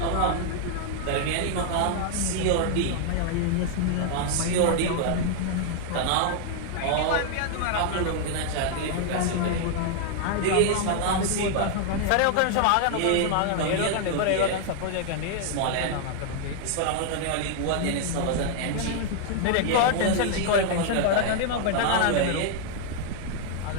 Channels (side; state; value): both; different; correlation 0.00